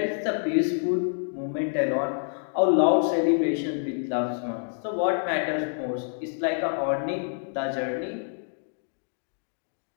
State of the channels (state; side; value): silent; right; digital silence